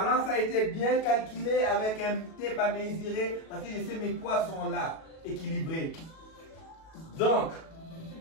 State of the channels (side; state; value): right; late; 37 ms